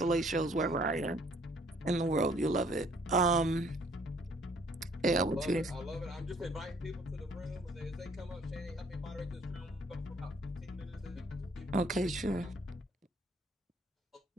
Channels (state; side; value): normal; both; correlation 0.61